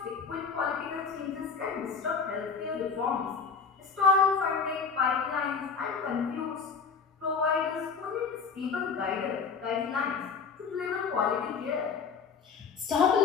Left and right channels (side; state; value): right; quieter; 5.5 dB